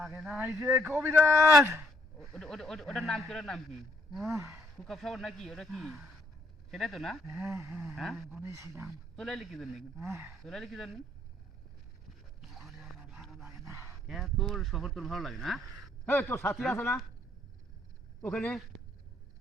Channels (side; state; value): both; normal; correlation 0.68